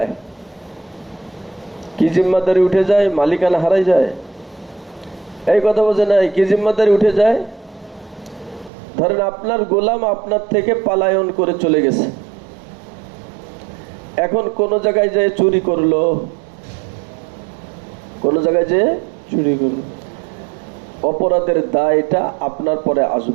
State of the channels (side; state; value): left; drops out; at 8.7 s